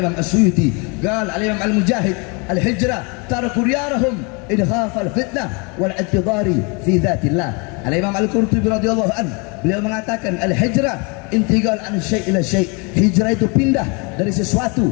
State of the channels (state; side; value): quieter; right; 31.5 dB